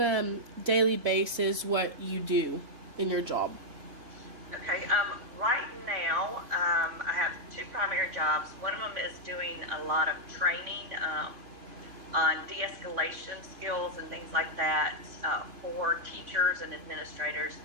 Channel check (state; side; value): late; left; 3.5 ms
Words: a daily basis what you do in your job? Okay, right now, I have two primary jobs. One of them is doing a lot of training on de-escalation skills and things like that for teachers and administrators